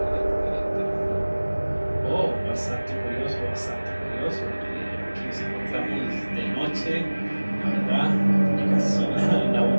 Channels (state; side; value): inverted; both; correlation -1.00